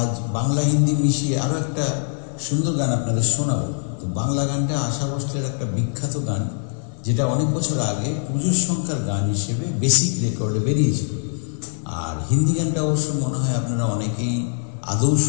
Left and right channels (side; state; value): right; silent; digital silence